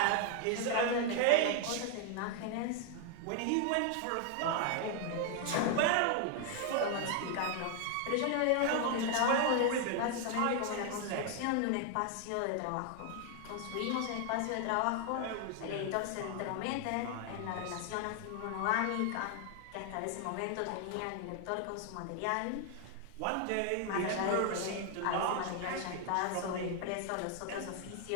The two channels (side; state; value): both; different; correlation 0.00